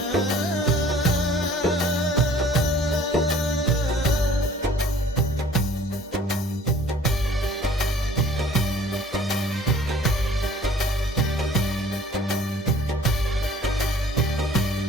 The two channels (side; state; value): both; normal; correlation 0.52